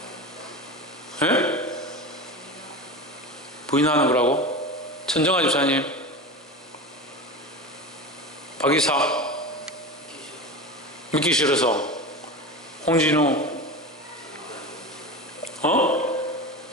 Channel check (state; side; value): normal; both; correlation 0.27